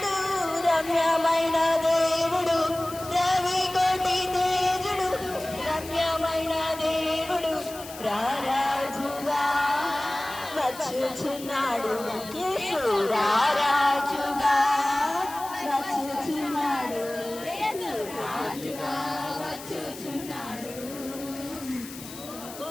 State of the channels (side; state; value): left; noise; hiss, 15 dB below the sound